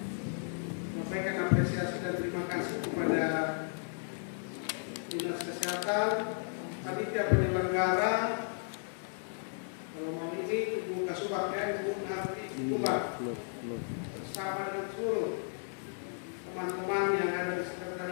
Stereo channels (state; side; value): silent; right; digital silence